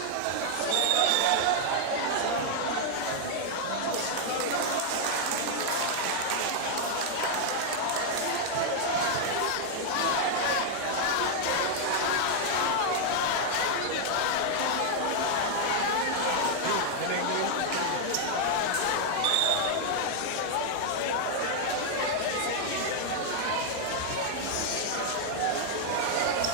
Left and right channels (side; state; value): both; different; correlation 0.00